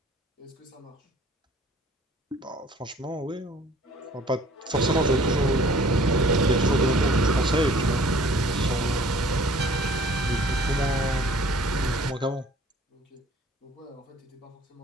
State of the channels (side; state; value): both; normal; correlation 0.53